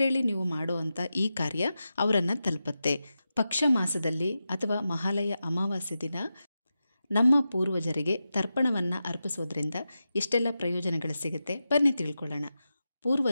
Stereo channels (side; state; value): both; inverted; correlation -0.91